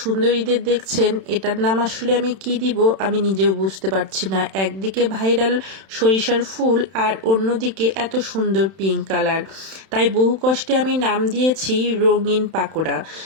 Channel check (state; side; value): late; left; 31 ms